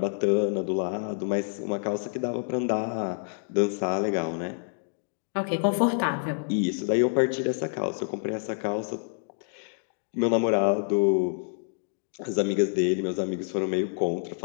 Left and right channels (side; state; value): right; silent; digital silence